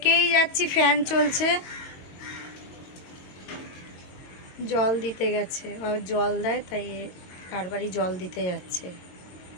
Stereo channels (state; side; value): late; right; 22 ms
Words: যাচ্ছি, ফ্যান চলছে। জল দিতে গেছে, ও জল দেয়, তাই কারবারই জল দিতে যাচ্ছে।